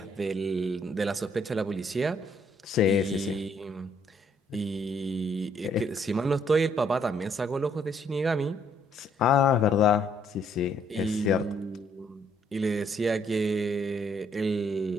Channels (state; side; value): normal; both; correlation 0.68